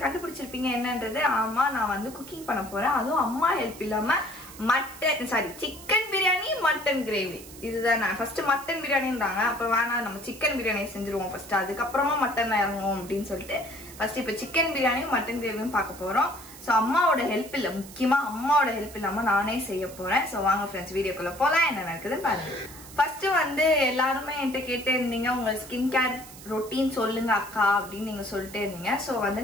கண்டுபிடிச்சிருப்பீங்க என்னன்றது. ஆமா, நான் குக்கிங் பண்ண போறேன். அதுவும் அம்மா ஹெல்ப் இல்லாம சிக்கன் பிரியாணி மட்டன் கிரேவி. இதுதான் நான் ஃபர்ஸ்ட் மட்டன் பிரியாணின்றாங்க, அப்புறம் வேணாம் நம்ம சிக்கன் பிரியாணி செஞ்சிருவோம் ஃபர்ஸ்ட், அதுக்கப்புறமா மட்டன் இறங்குவோம் அப்படின்னு சொல்லிட்டு ஃபர்ஸ்ட் இப்போ சிக்கன் பிரியாணியும் மட்டன் கிரேவியும் பார்க்க போறோம். ஸோ அம்மாவோட ஹெல்ப் இல்லை, முக்கியமா அம்மாவோட ஹெல்ப் இல்லாம நானே செய்ய போறேன். ஸோ வாங்க ஃப்ரெண்ட்ஸ், வீடியோக்குள்ள போலாம். என்ன நடக்குதுன்னு பாருங்க. ஃபர்ஸ்ட் எல்லாருமே என்கிட்ட கேட்டு இருந்தீங்க, உங்க ஸ்கின் கேர் ரொட்டீன் சொல்லுங்க அக்கா அப்படின்னு நீங்க சொல்லிட்டே இருந்தீங்க. சோ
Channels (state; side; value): noise; right; hiss, 17 dB below the sound